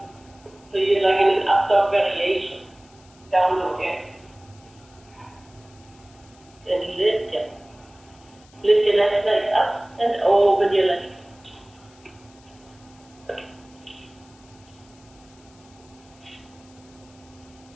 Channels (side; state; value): left; noise; hiss, 28 dB below the sound